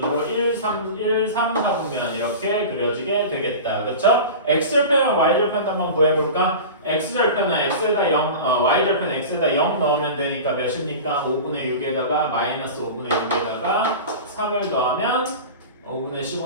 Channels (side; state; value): both; inverted; correlation -0.32